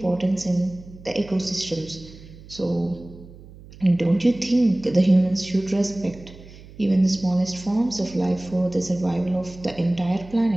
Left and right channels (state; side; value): noise; right; hum, 19 dB below the sound